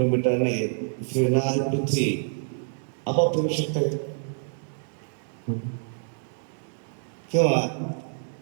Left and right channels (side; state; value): left; silent; digital silence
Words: फिरणारी पृथ्वी आपोआप फिरू शकते. किंवा